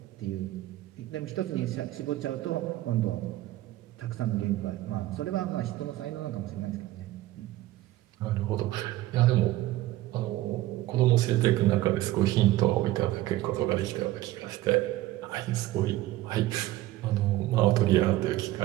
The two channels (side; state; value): left; quieter; 16.0 dB